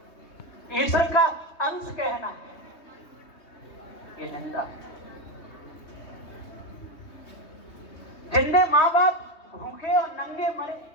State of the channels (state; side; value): late; right; 3.2 ms